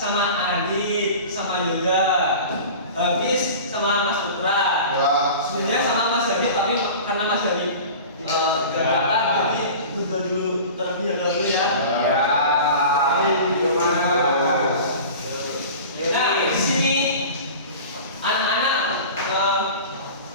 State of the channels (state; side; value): inverted; both; correlation -0.37